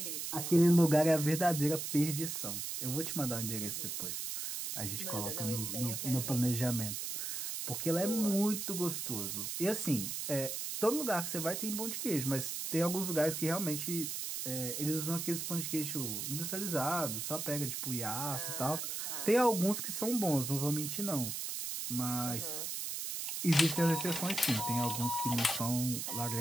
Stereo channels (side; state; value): right; noise; hiss, 4 dB below the sound